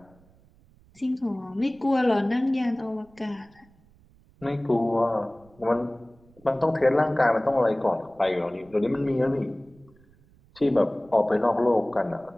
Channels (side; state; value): right; noise; rumble, 29 dB below the sound